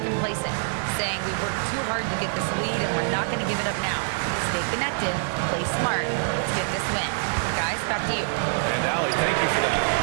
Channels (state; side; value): silent; left; digital silence